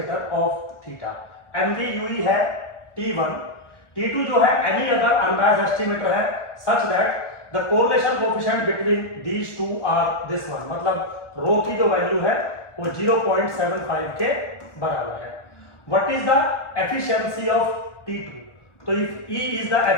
of theta. MVUE है T1, T2 जो है एनी अदर अनबायस्ड एस्टिमेटर है such that the correlation coefficient between these two are this one. मतलब रो की जो वैल्यू है वो 0.75 के बराबर है। What is the efficiency of T2? तो if E is the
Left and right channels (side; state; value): right; late; 1.4 ms